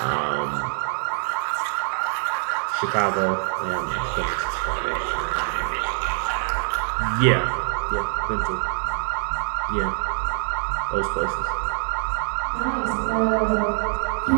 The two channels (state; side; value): silent; left; digital silence